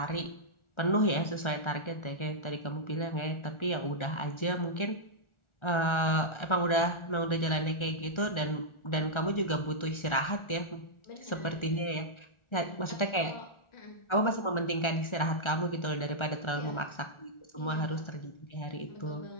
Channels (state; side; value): late; right; 1.3 ms